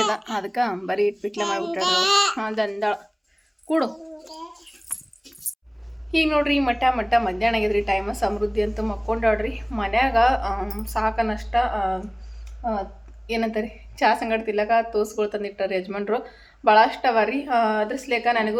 ಅದ, ಅದಕ್ಕೆ ಬರೀ ಪಿಟ್ಲೆ ಮಾಡಿಬಿಟ್ಟಾಡ್ರಿ. ದಂದಾಳ ಕೂಡು. ಈಗ ನೋಡ್ರಿ ಮಟ್ಟ ಮಧ್ಯಾಹ್ನ ಆಗಿದ್ರಿ. ಟೈಮ ಸಮೃದ್ಧಿ ಅಂತ ಮಕ್ಕೊಂಡಾಡ್ರಿ. ಮನ್ಯಾಗ ಸಾಕನಷ್ಟ ಏನಂತಾರೆ ಚಹಾ ಸಂಗಡ ತಿಲ್ಲಕ ತೋಸ್ಗಳು ತಂದಿಟ್ಟಾರೆ ಯಜಮಾನ್ರು. ಭಾಳಷ್ಟು ಅವ ರೀ. ಅದ್ರ ಸಲೇಕ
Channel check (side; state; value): both; identical; correlation 1.00